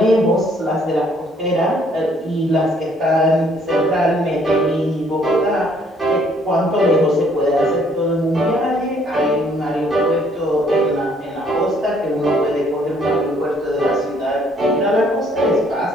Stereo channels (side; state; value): both; normal; correlation 0.64